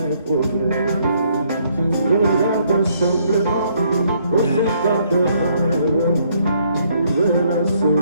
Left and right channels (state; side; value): inverted; both; correlation -0.69